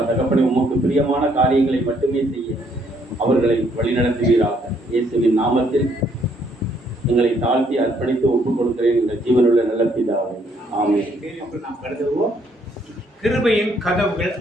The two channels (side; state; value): both; normal; correlation 0.68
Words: தகப்பனை, உமக்கு பிரியமான காரியங்களை மட்டுமே செய்ய அவர்களை வழிநடத்துவீராக. இயேசுவின் நாமத்தில் எங்களை தாழ்த்தி அர்ப்பணித்து ஒப்புக் கொடுக்கிறேன் எங்கள் ஜீவனுள்ள நல்ல பிதாவே. ஆமென். நாம் கருதுவோம், கிருபையின் கதவுகள்